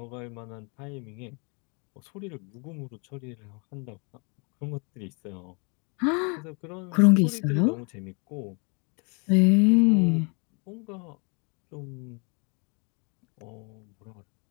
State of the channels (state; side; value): quieter; right; 33.9 dB